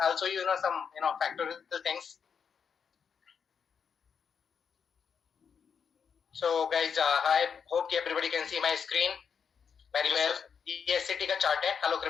will show you some factorial things. So guys, I hope everybody can see my screen very well. ये एससीटी का चार्ट है, hello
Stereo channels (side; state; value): right; quieter; 6.7 dB